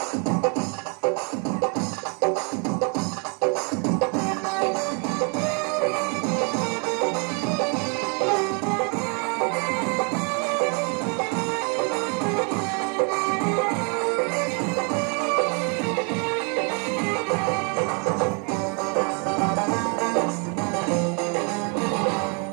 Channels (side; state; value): left; quieter; 36.8 dB